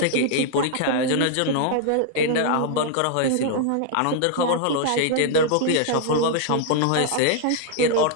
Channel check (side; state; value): both; different; correlation -0.01